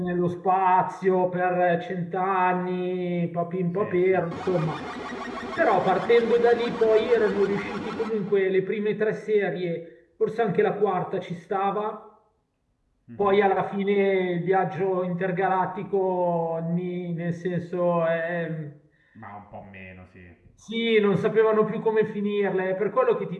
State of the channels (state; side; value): identical; both; correlation 1.00